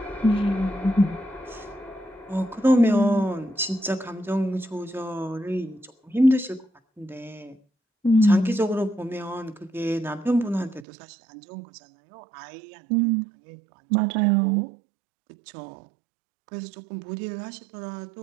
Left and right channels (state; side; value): drops out; left; at 10.9 s